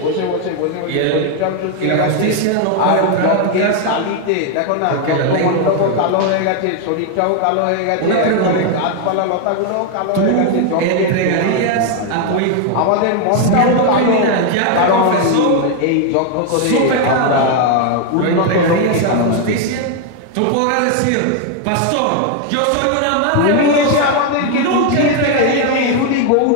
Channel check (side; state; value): both; different; correlation 0.01